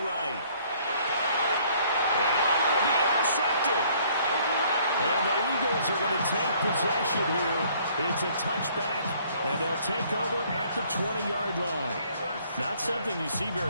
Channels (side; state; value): both; inverted; correlation -0.61